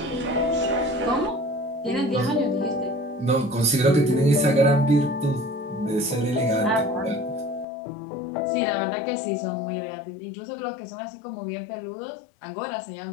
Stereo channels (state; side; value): drops out; right; at 7.7 s